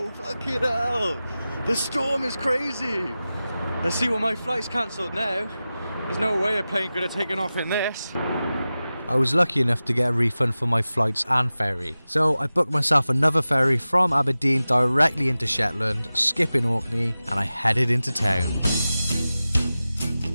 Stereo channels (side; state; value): both; inverted; correlation -0.95